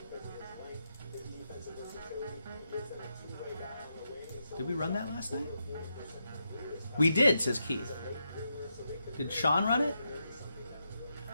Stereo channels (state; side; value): inverted; both; correlation -0.84